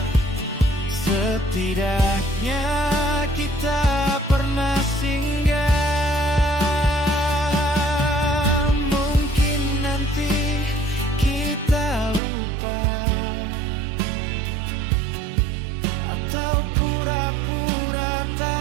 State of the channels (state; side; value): drops out; left; at 12.2 s